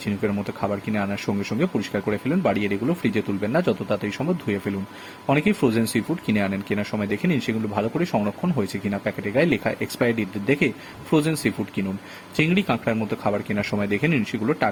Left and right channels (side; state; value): both; identical; correlation 1.00